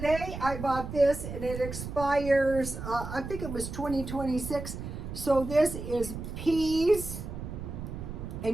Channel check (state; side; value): noise; right; rumble, 8 dB below the sound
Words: I bought this and it expires, I think it was 2026. So this is peas,